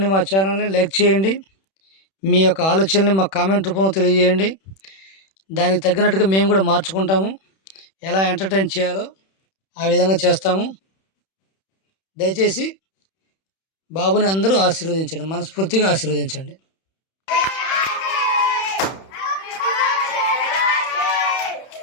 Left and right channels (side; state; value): right; late; 31 ms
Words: మా ఛానల్ని లైక్ చేయండి, మీ యొక్క ఆలోచనని మా కామెంట్ రూపంలో తెలియజేయండి. దానికి తగ్గినట్టుగా మేము కూడా మార్చుకుంటాము. ఎలా ఎంటర్టైన్ చేయాలో ఆ విధంగా చేస్తాము. దయచేసి బాబుని అందరూ ఆశీర్వదించండి, మనస్ఫూర్తిగా ఆశీర్వదించండి.